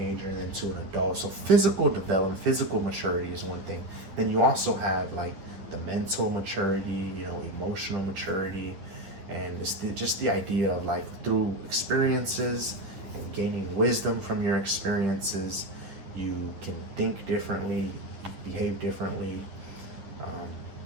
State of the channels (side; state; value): left; late; 10 ms